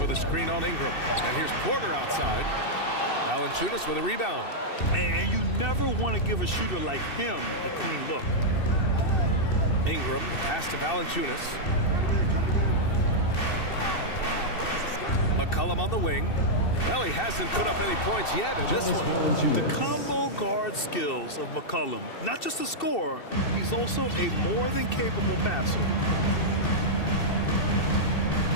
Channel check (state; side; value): late; right; 2.7 ms